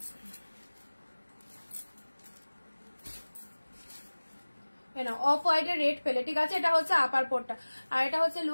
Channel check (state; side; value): inverted; both; correlation -1.00